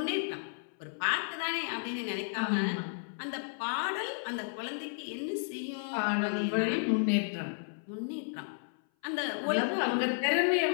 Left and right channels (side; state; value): right; silent; 56 dB below the other